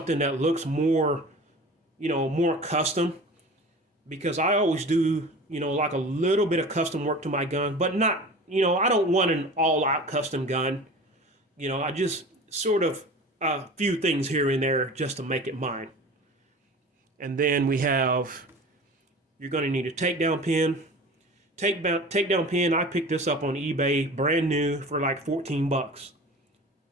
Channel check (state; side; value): normal; both; correlation 0.38